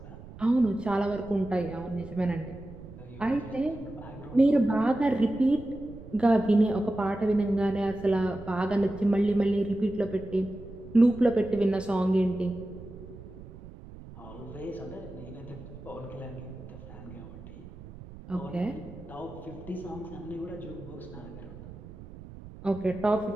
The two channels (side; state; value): right; noise; rumble, 16 dB below the sound